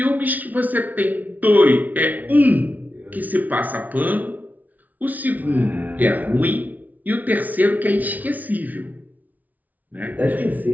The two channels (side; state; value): left; late; 0.077 ms